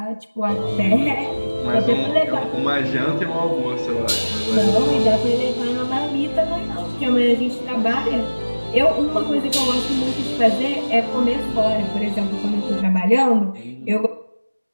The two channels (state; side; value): inverted; both; correlation -1.00